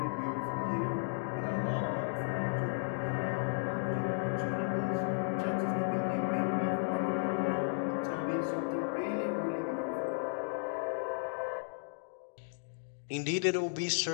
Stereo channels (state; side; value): silent; right; digital silence